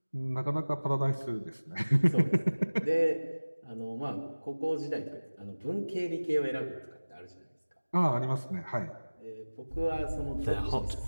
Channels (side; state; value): both; inverted; correlation -1.00